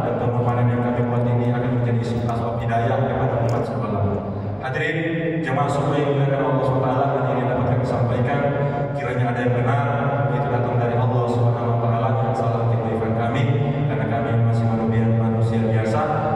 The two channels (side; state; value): both; identical; correlation 1.00